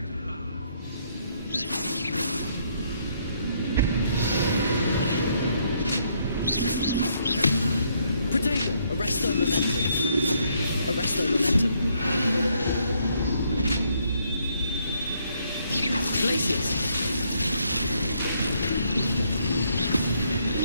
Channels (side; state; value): both; inverted; correlation -0.71